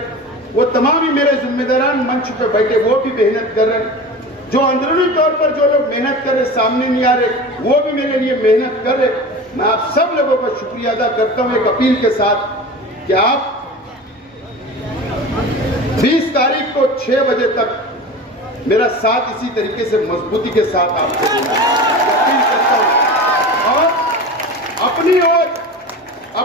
वो तमाम ही मेरे जिम्मेदारान मंच पे बैठे, वो भी मेहनत कर रहे। जो अंदरूनी तौर पर जो लोग मेहनत कर रहे, सामने नहीं आ रहे, वो भी मेरे लिए मेहनत कर रहे। मैं आप सब लोगों का शुक्रिया अदा करता हूं एक अपील के साथ कि आप 20 तारीख को 6 बजे तक मेरा साथ इसी तरीके से मजबूती के साथ आपको देना अपील करता हूं। और अपनी ओर,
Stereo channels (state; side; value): normal; both; correlation 0.32